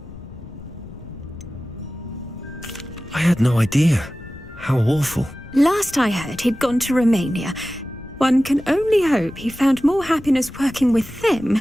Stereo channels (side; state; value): left; noise; rumble, 17 dB below the sound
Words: I had no idea. How awful. Last I heard, he'd gone to Romania. One can only hope he found more happiness working with them